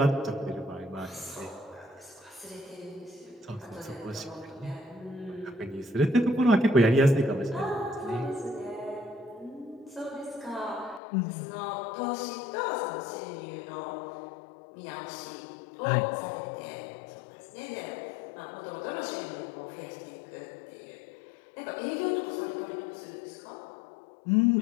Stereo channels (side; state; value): right; drops out; at 11.0 s